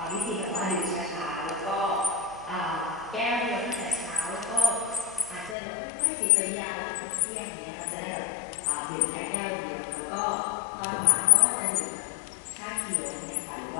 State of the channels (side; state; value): right; drops out; at 5.6 s